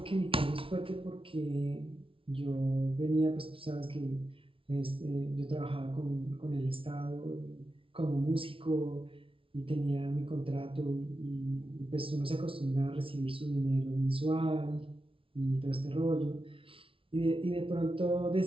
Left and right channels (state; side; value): late; left; 0.26 ms